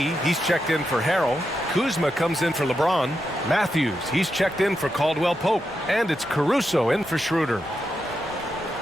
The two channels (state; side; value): normal; both; correlation 0.86